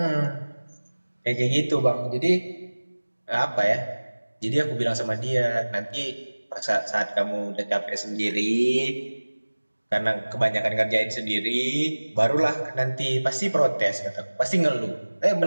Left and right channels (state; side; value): inverted; both; correlation -1.00